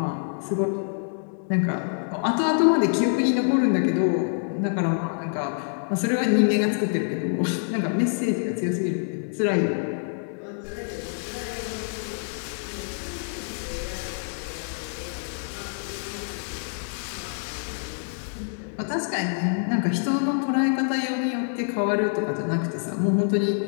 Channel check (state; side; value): silent; right; 59 dB below the other